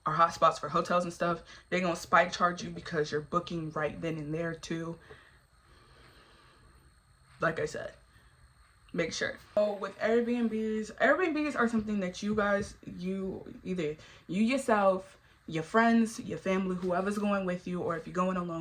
are hotspots for hotels and stuff. They're gonna spike charge you because you're booking right then and there too. Like I said, make sure. So with Airbnbs are something that you guys, either you yourself, your friends, your family, whoever's going with you, or if you're going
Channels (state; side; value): identical; both; correlation 1.00